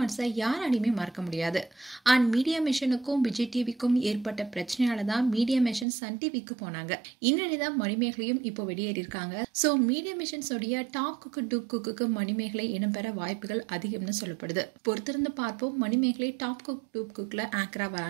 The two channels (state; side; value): drops out; left; at 5.9 s